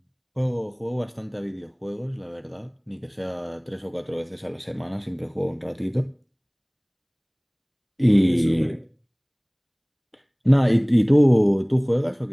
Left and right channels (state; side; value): identical; both; correlation 1.00